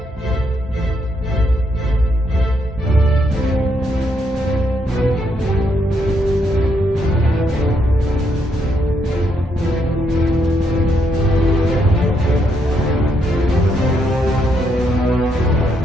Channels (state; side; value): normal; both; correlation 0.76